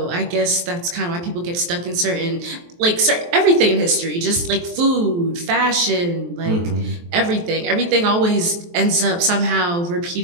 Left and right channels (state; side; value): late; left; 23 ms